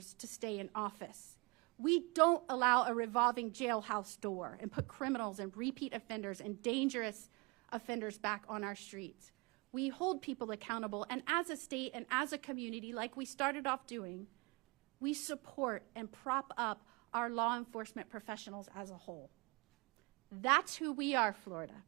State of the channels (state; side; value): quieter; left; 28.4 dB